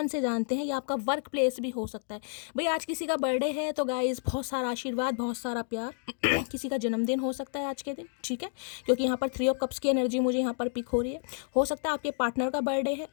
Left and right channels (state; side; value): silent; right; 58 dB below the other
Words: से जानते हैं, या आपका वर्क प्लेस भी हो सकता है। भाई आज किसी का बर्थडे है तो गाइस बहुत सारा आशीर्वाद, बहुत सारा प्यार। किसी का जन्मदिन हो सकता है आज के दिन, ठीक है, क्योंकि यहाँ पर 3 ऑफ कप्स की एनर्जी मुझे यहाँ पर पिक हो रही है। हो सकता है आपके पार्टनर का बर्थडे